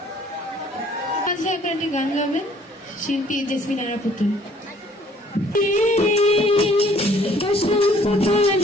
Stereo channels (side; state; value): both; normal; correlation 0.58